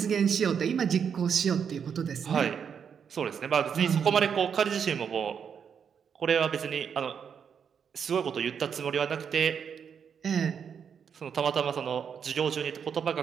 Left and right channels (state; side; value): quieter; left; 7.2 dB